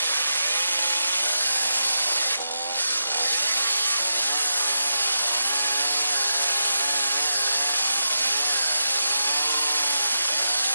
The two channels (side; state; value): both; inverted; correlation -0.86